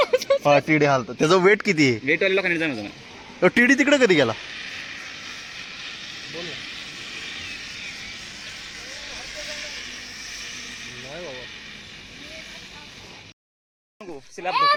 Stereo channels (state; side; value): identical; both; correlation 1.00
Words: हा टिडी हालत. त्याचं वेट किती आहे? वेटवाल्या लोकांनी जाणवतं ना. टिडी तिकडे कधी गेला? स्लॅब